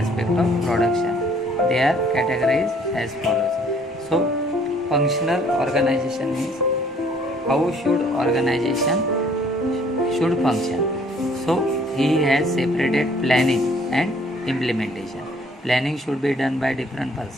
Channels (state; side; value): normal; both; correlation 0.60